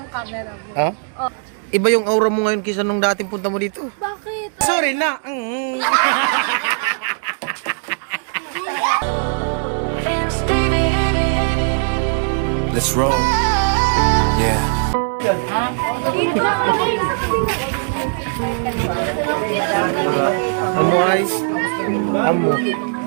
camera mo. Ha? Oh. Iba yung aura mo ngayon kaysa nung dating punta mo dito. Bakit? Sorry na. Let's roll. Yeah. Amo ay. Amo.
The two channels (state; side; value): silent; left; 67 dB below the other